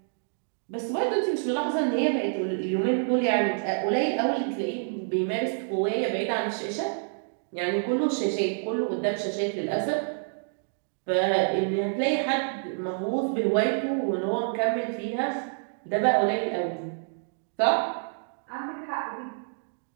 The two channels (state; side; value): silent; left; digital silence